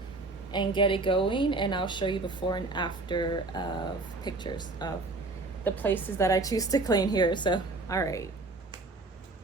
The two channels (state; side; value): quieter; left; 3.3 dB